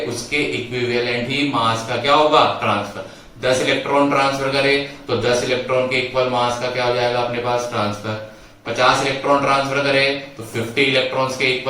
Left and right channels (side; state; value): both; identical; correlation 1.00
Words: उसके इक्विवेलेंट ही मास का क्या होगा, ट्रांसफर। 10 इलेक्ट्रॉन ट्रांसफर करे तो 10 इलेक्ट्रॉन के इक्वल मास का क्या हो जाएगा अपने पास, ट्रांसफर। 50 इलेक्ट्रॉन ट्रांसफर करे तो 50 इलेक्ट्रॉन्स के